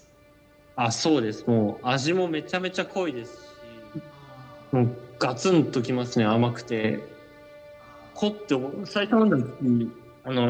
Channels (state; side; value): identical; both; correlation 1.00